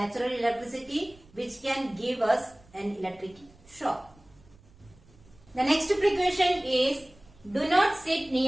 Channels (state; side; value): noise; right; rumble, 27 dB below the sound